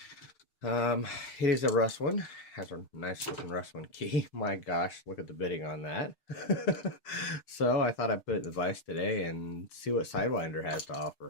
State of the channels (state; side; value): late; right; 6.6 ms